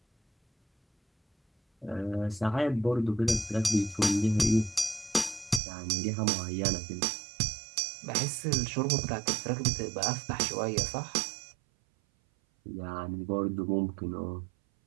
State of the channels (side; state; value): left; drops out; at 5.6 s